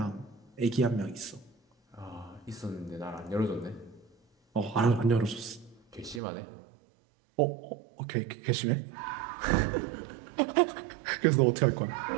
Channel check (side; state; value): left; drops out; at 6.2 s